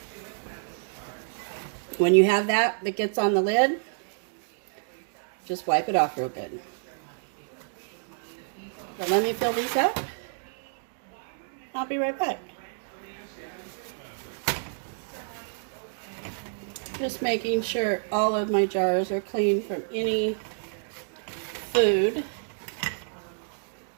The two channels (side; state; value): left; silent; digital silence